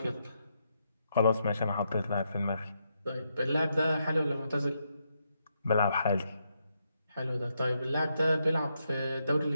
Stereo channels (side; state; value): both; inverted; correlation -0.80